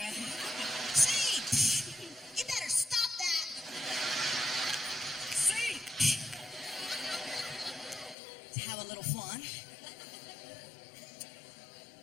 See, you better stop that. See, to have a little fun.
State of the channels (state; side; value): drops out; right; at 8.2 s